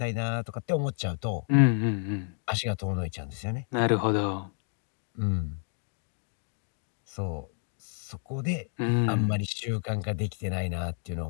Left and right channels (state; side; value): silent; right; 58 dB below the other